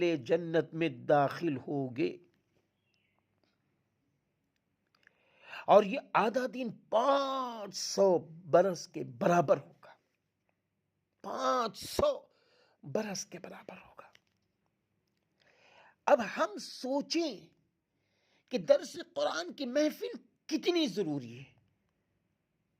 جنت میں داخل ہوگے، اور یہ آدھا دن 500 برس کے برابر ہوگا۔ 500 برس کے برابر ہوگا۔ اب ہم سوچیں کہ درس قرآن کی محفل کتنی ضروری ہے۔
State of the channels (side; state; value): both; identical; correlation 1.00